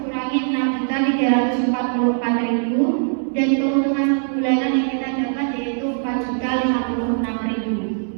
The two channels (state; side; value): silent; left; 65 dB below the other